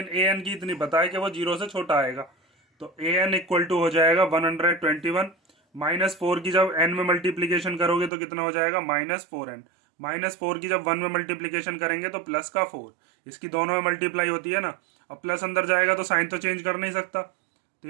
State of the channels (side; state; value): left; drops out; at 8.1 s